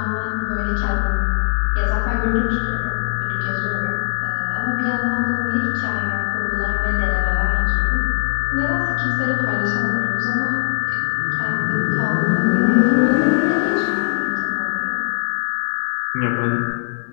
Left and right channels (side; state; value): right; silent; digital silence